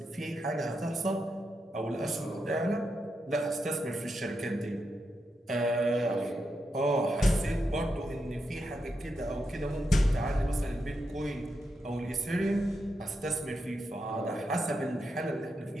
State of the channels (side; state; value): both; normal; correlation 0.85